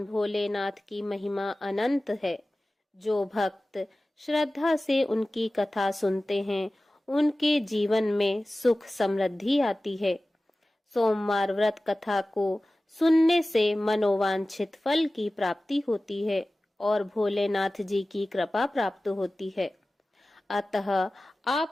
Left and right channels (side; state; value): both; normal; correlation 0.97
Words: भोलेनाथ की महिमा अनंत है। जो भक्त श्रद्धा से उनकी कथा सुनते हैं, उनके जीवन में सुख समृद्धि आती है। सोमवार व्रत कथा को सुनने से मनोवांछित फल की प्राप्ति होती है और भोलेनाथ जी की कृपा प्राप्त होती है। अतः